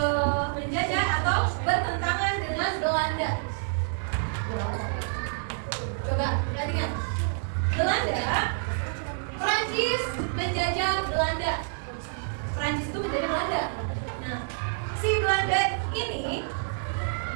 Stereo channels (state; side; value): silent; left; digital silence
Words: menjajah atau bertentangan dengan Belanda. Coba perhatikan. Prancis menjajah Belanda. Prancis itu menjajah Belanda. Nah, si Belanda ini